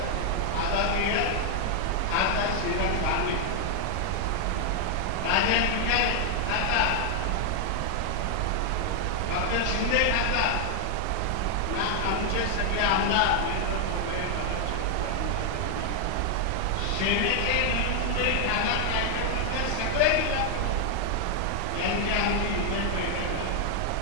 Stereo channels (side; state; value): both; different; correlation 0.00